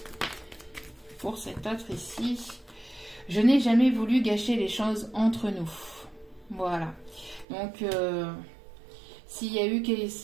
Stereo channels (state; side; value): drops out; left; at 7.5 s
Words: pour cet autre ici. Je n'ai jamais voulu gâcher les choses entre nous. Voilà, donc s'il y a eu